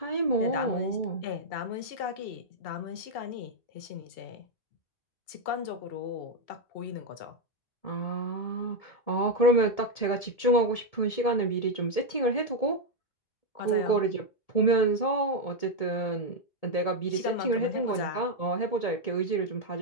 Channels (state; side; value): late; right; 2.7 ms